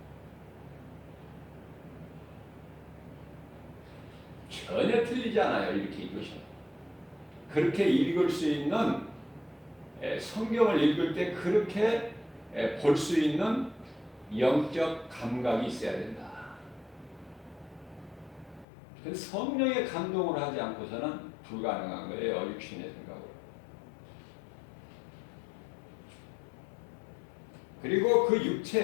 전혀 틀리지 않아요. 이렇게 읽으시면. 그렇게 읽을 수 있는, 성경을 읽을 때 그렇게 볼 수 있는 영적 감각이 있어야 된다. 성령의 감동을 하지 않고서는 불가능한 거예요. 육신의 생각으로. 그리고 그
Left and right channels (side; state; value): right; drops out; at 18.7 s